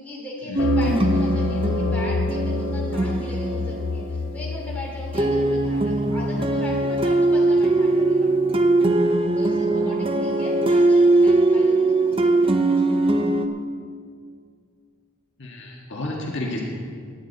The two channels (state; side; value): normal; both; correlation 0.75